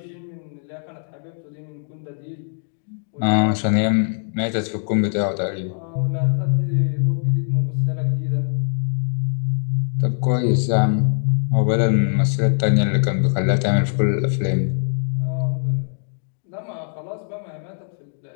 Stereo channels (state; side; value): silent; right; digital silence